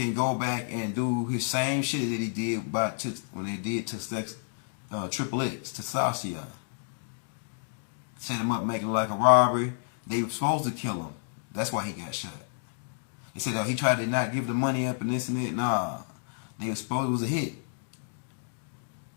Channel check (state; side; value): silent; right; digital silence